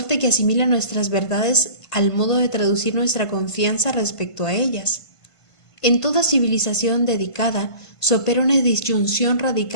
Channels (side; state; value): right; late; 1.5 ms